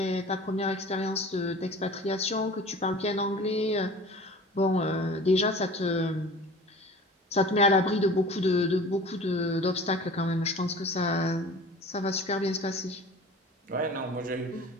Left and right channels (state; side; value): normal; both; correlation 0.41